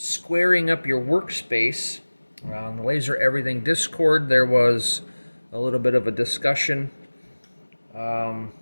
up your workspace. On the Laser Everything Discord there was a little bit of a discussion about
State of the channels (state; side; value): inverted; both; correlation -1.00